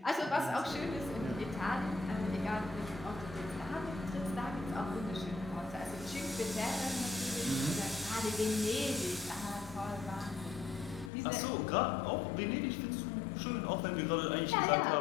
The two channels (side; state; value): right; drops out; at 11.1 s